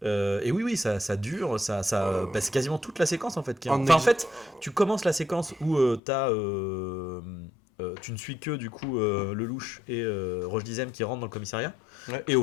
Et oui, ça dure, c'est quasiment toute la séquence en fait. En fait, tu commences la séquence où tu ne suis que du coup Lelouch et Roche Dizem qui rentrent dans le commissariat, et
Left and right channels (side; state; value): right; drops out; at 6.0 s